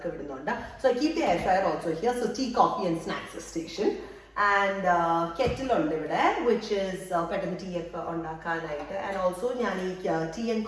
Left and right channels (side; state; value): both; identical; correlation 1.00